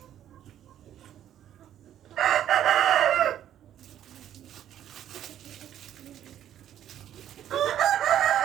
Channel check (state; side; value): quieter; left; 11.0 dB